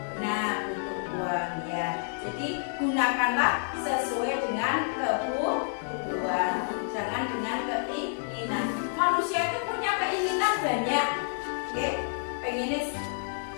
uang ya. Jadi gunakanlah sesuai dengan kebutuhan, jangan dengan keinginan. Manusia itu punya keinginan banyak, oke? Pengennya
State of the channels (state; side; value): silent; right; 59 dB below the other